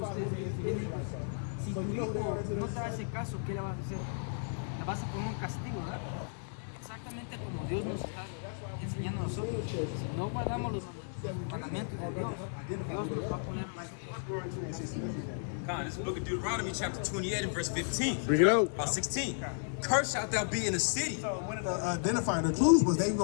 Si tu hijo no te hace caso, ¿qué le vas a hacer? La vas a poner un castigo, ¿verdad? Exactamente como Dios nos está enseñando a nosotros. Si no guardamos los mandamientos de Dios, Dios nos va a poner God, this is the book of Deuteronomy, chapter 28 and verse 15. Bring it out. About 16. Cursed shalt thou be in the city. So one of the identifying the clues was they were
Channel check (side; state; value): right; silent; digital silence